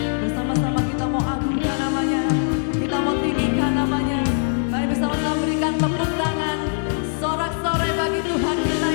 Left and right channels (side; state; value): right; silent; digital silence